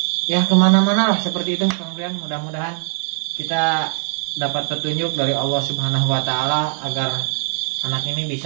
ya kemana-mana lah seperti itu Kang Brian. Mudah-mudahan kita dapat petunjuk dari Allah Subhanahu wa taala agar anak ini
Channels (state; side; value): silent; left; 56 dB below the other